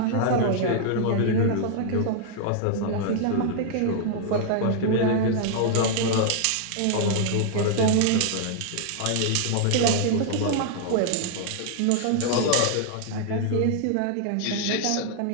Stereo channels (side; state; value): both; different; correlation 0.00